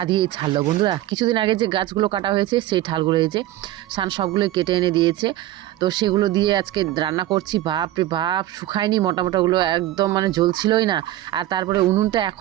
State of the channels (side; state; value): left; quieter; 14.7 dB